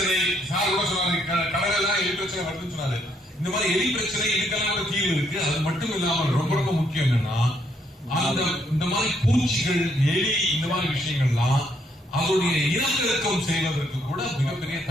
சார் கூட சொன்னாரு, கடலெல்லாம் எலி பிரச்சனை வருதுன்னு சொன்னாரு. இந்த மாதிரி எலி பிரச்சனை இதுக்கெல்லாம் கூட தீர்வு இருக்கு. அது மட்டும் இல்லாமல் ரொம்ப ரொம்ப முக்கியம் என்னன்னா, அந்த இந்த மாதிரி பூச்சிகள், எலி, இந்த மாதிரி விஷயங்கள்லாம் அதோடைய இனப்பெருக்கம் செய்வதற்கு கூட மிகப்பெரிய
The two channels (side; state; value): both; normal; correlation 0.72